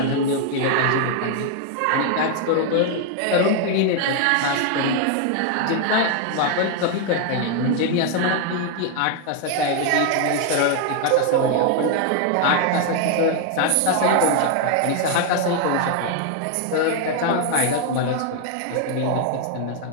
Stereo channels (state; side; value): different; both; correlation 0.00